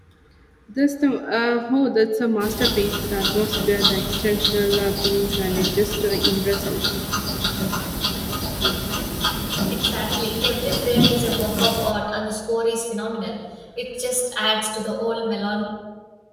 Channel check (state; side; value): identical; both; correlation 1.00